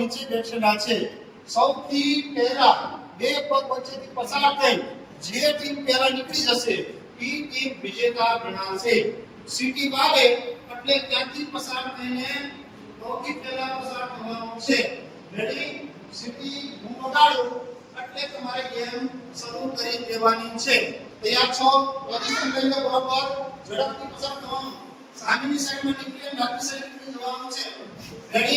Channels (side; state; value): both; identical; correlation 1.00